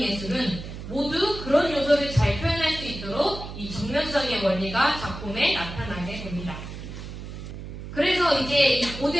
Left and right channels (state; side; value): noise; right; hum, 10 dB below the sound